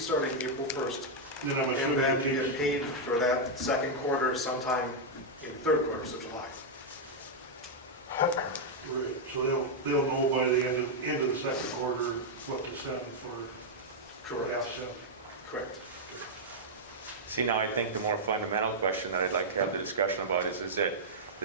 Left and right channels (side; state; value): both; normal; correlation -0.04